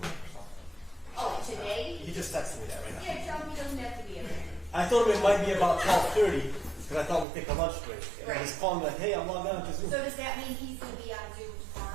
something. Oh, today? He just texted me that right now. Yeah, tell me he doesn't have to be in there. I told him it might be about 12:30 because I thought we'd take a lunch break. And Right. he's calling me like, hey, I'm logged on to Zoom. So does that mean he's going to be on Zoom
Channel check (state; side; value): drops out; left; at 7.2 s